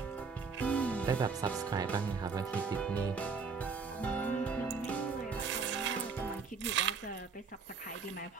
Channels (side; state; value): left; quieter; 5.1 dB